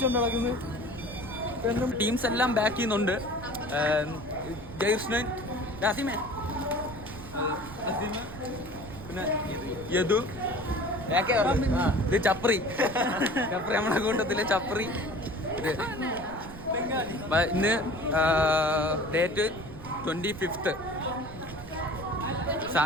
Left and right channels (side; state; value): right; noise; rumble, 14 dB below the sound